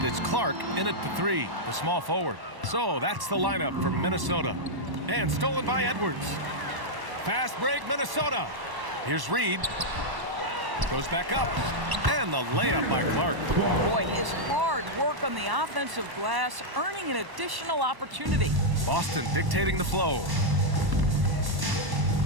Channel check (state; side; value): late; left; 1.1 ms